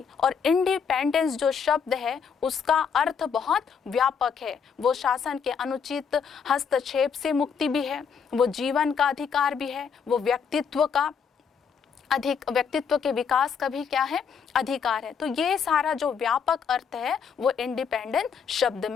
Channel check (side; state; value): right; quieter; 6.6 dB